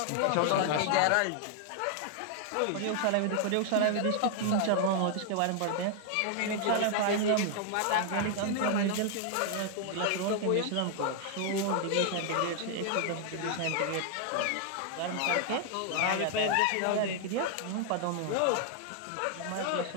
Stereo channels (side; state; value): both; different; correlation 0.00